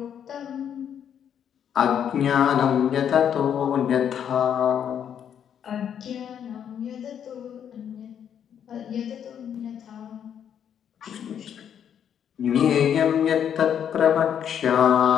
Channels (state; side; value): quieter; right; 8.8 dB